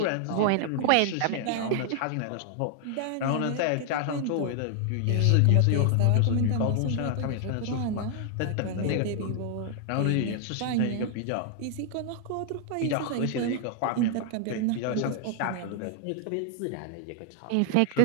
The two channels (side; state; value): both; different; correlation 0.00